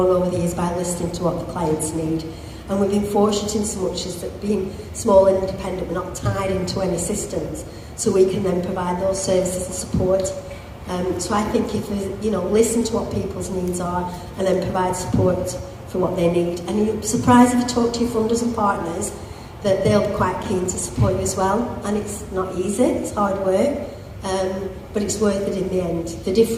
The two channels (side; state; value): both; identical; correlation 1.00